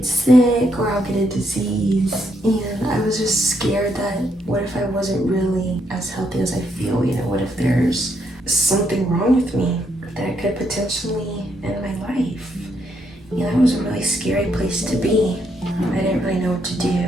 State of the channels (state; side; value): normal; both; correlation 0.76